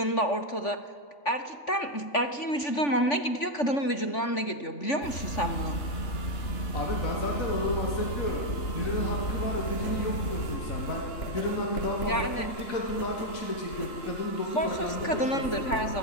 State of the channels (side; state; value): right; late; 3.5 ms